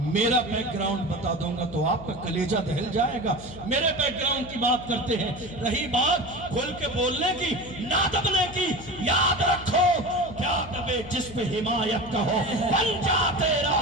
میرا بیک گراؤنڈ بتا دوں گا تو آپ کا کلیجہ دہل جائے گا، میرے بیک گراؤنڈ کی بات کرتے ہیں۔ رہی بات کھل کے بولنے کی، نہ دبنے کی، یاد رکھو کیا دبے جس پہ حمایت کا ہو، بن جا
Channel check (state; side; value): noise; left; hum, 15 dB below the sound